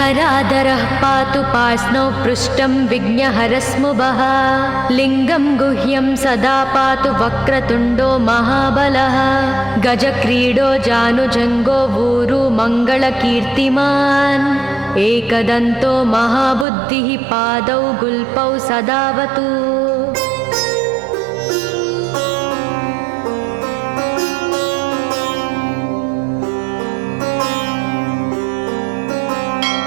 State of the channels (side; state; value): left; drops out; at 16.7 s